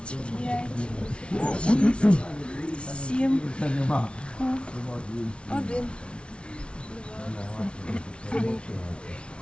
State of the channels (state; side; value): late; right; 0.059 ms